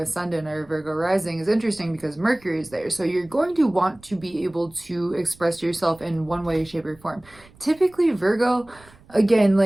or Virgo rising is interesting because Mercury is there. So you're going to want to be able to express yourself in one way, shape, or form. Typically Virgo, again,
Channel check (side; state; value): right; noise; rumble, 26 dB below the sound